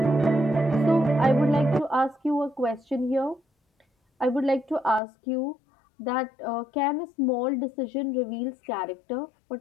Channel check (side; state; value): right; drops out; at 5.0 s